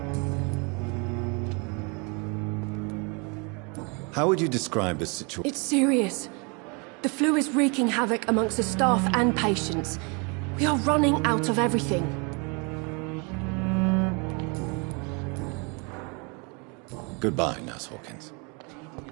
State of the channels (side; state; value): left; quieter; 32.1 dB